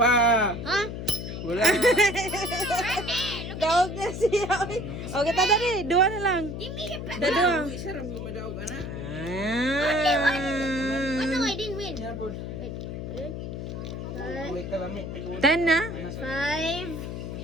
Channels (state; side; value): noise; left; hum, 6 dB below the sound